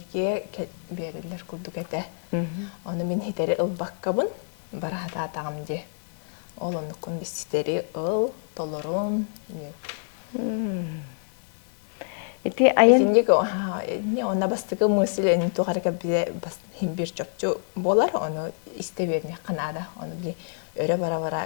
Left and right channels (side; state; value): right; silent; digital silence